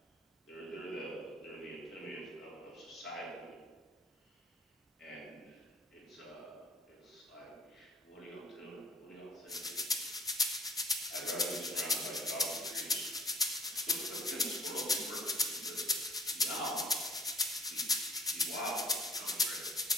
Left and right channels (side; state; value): both; normal; correlation 0.52